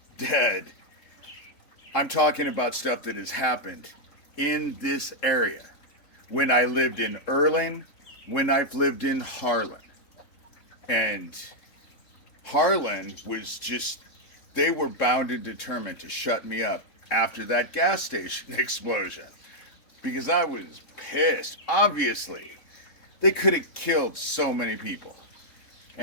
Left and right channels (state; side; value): late; right; 3.6 ms